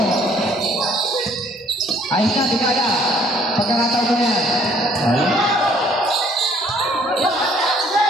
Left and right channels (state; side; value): normal; both; correlation 0.60